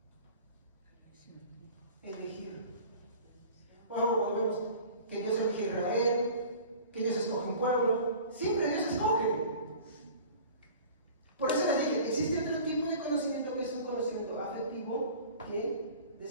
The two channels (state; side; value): inverted; both; correlation -0.43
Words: Elegir. Volvemos. Que Dios elige a Israel, que Dios escoge un pueblo. Siempre Dios escoge. Por eso les dije, existe otro tipo de conocimiento que es un conocimiento afectivo que